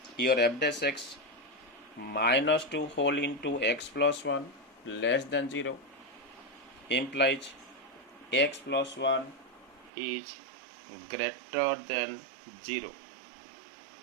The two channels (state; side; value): drops out; left; at 9.9 s